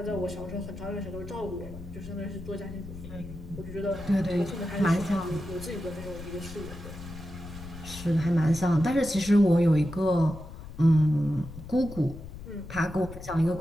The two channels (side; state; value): left; noise; rumble, 13 dB below the sound